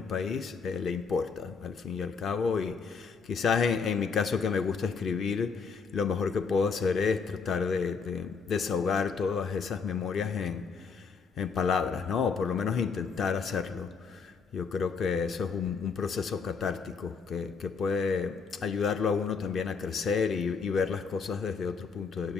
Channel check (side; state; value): right; quieter; 5.4 dB